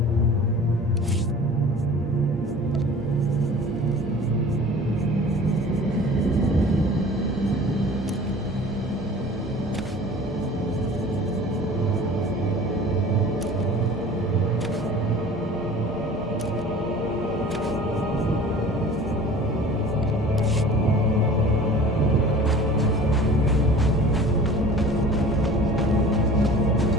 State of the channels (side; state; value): both; normal; correlation 0.43